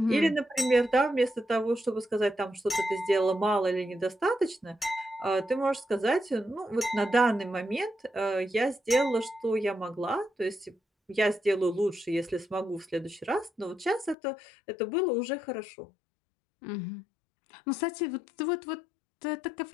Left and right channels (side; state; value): right; drops out; at 14.2 s